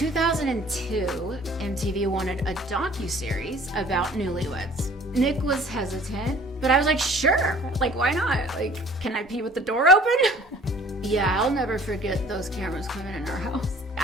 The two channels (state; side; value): normal; both; correlation 0.51